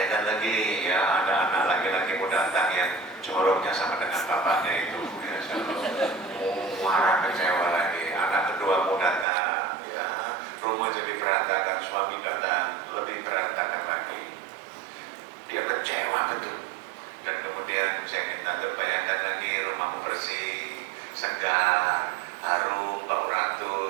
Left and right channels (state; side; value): drops out; left; at 9.2 s